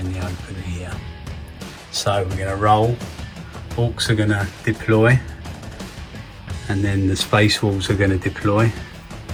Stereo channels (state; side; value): identical; both; correlation 1.00